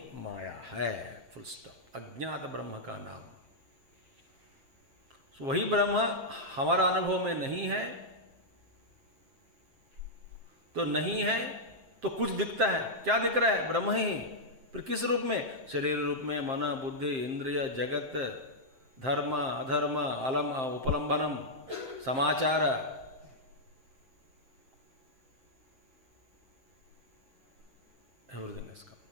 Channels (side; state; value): left; late; 7.6 ms